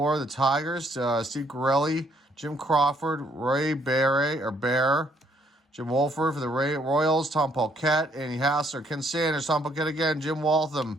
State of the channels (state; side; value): normal; both; correlation 0.68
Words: The Tigers, Steve Corelli, Jim Crawford, Ray Bear, Jim Wolford for the Royals, Tom Paquette, Andy Hassler, Ken Sanders, Tom Paquette again, Jim